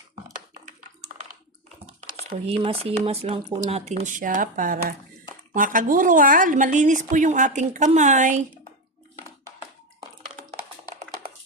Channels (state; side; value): normal; both; correlation 0.14